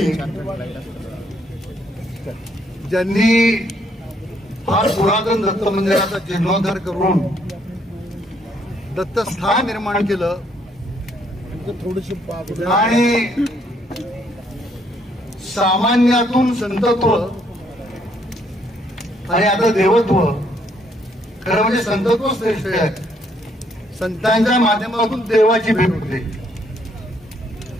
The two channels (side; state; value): both; normal; correlation 0.70